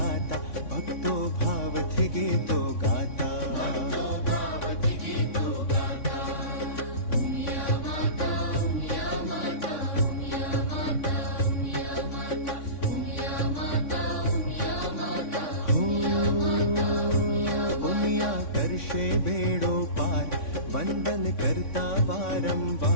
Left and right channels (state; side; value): late; right; 3.6 ms